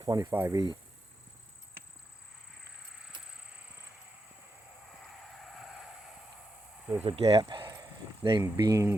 25E. There's a gap named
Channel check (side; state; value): both; normal; correlation 0.86